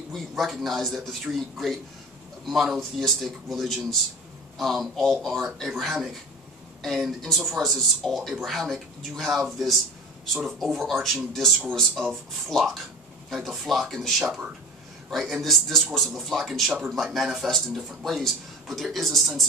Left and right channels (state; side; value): normal; both; correlation 0.35